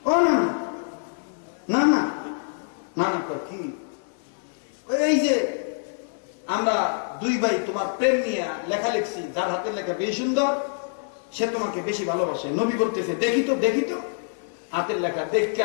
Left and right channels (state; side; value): silent; right; 61 dB below the other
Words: ও না না না না না, কি এই যে আমরা দুই ভাই তোমার প্রেম নিয়ে লেখা লিখছি, যার হাতের লেখা বেশি সুন্দর সে তোমাকে বেশি ভালোবাসে। নবী বলতেছে, দেখি তো দেখি তো হাতের লেখা।